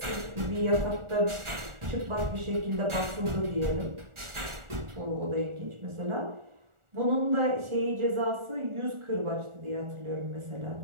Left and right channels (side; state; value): left; late; 1.4 ms